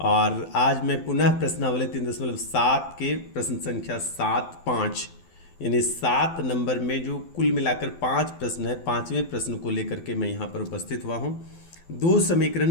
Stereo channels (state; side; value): late; right; 12 ms